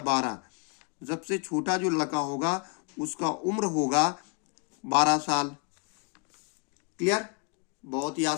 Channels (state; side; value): quieter; right; 36.8 dB